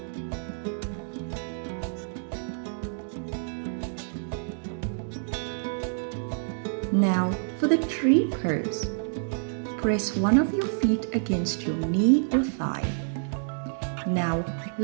Now for the tree pose. Press one of your feet against your knee or thigh. Now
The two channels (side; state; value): left; silent; digital silence